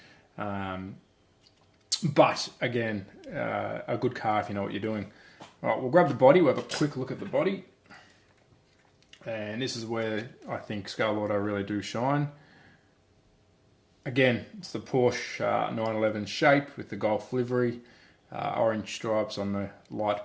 But again, a good car if you know what you're doing. All right, we'll grab the body. We'll have a quick look at the body. And this is where I think Scaleauto really do shine. Again, it's the Porsche 911 shape with the Golf livery. Orange stripes on the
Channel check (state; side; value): identical; both; correlation 1.00